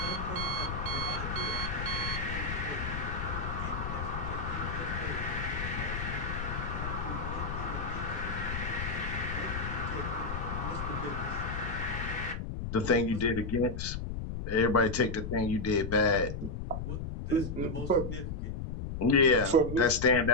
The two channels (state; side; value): noise; left; rumble, 5 dB below the sound